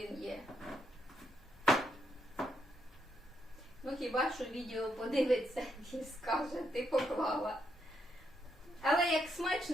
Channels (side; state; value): both; normal; correlation 0.78